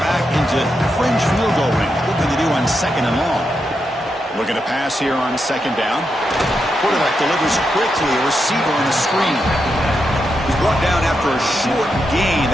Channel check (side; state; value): both; normal; correlation 0.85